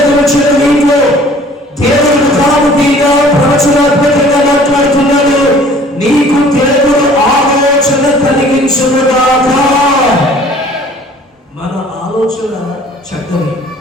నీటిలో దేవుడు ముఖాముఖిగా ప్రవచనాత్మకంగా మాట్లాడుతున్నాడు. నీకు దేవుడు ఆలోచన కలిగించుగాక. మన ఆలోచన చెడ్డది.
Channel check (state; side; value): normal; both; correlation 0.52